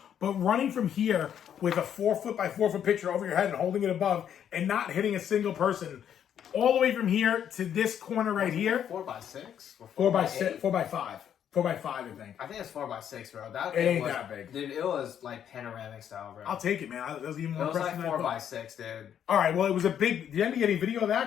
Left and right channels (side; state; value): right; quieter; 9.3 dB